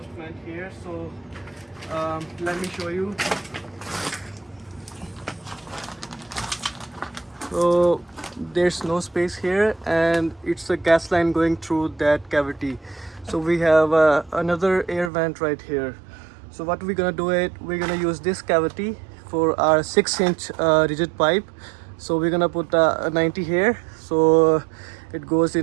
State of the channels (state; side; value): drops out; left; at 15.1 s